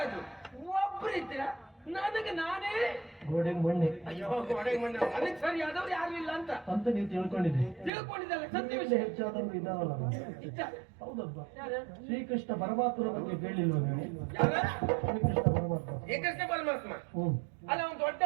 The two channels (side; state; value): left; drops out; at 7.9 s